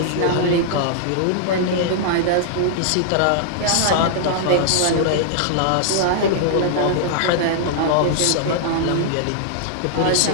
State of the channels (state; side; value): different; both; correlation -0.01